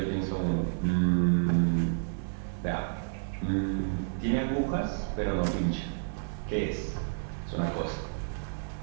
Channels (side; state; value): left; silent; digital silence